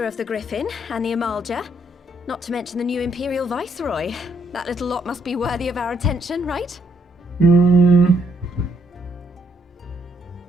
of the Griffin and the Amalja, not to mention the new Imperial Viceroy. That little lot must be worthy of our attention, right?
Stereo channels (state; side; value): normal; both; correlation 0.72